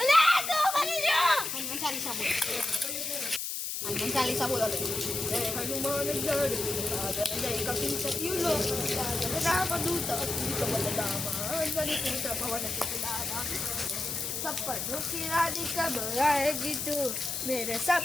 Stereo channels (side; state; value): left; noise; hiss, 3 dB below the sound